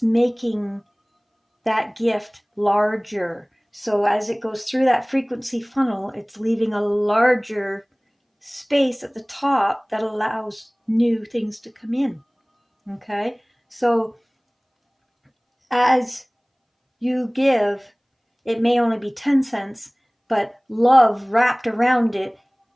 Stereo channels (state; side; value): identical; both; correlation 1.00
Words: making that gift larger. So as it goes through that frequency funnel, it's leaving a larger space at the top that allows new things to come in. Okay? So as you give, it may only be 10 cents, but love wrapped around it